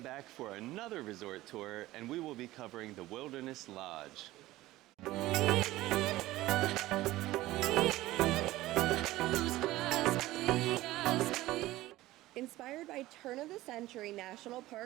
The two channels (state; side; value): quieter; left; 17.0 dB